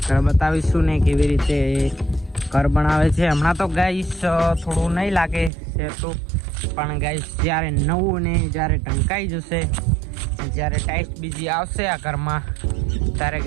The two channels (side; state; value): left; drops out; at 5.5 s